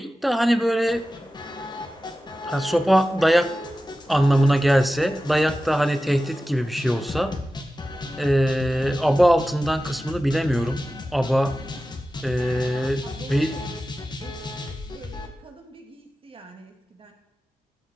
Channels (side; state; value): both; normal; correlation 0.94